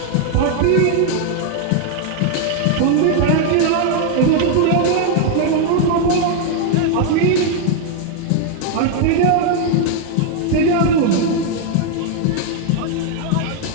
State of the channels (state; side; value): different; both; correlation 0.00